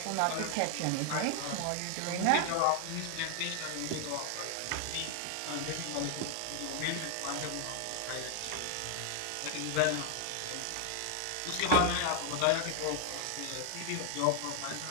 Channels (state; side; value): different; both; correlation 0.00